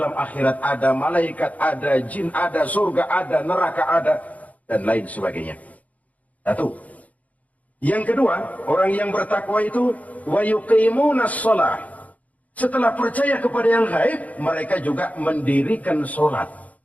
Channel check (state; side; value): late; right; 0.072 ms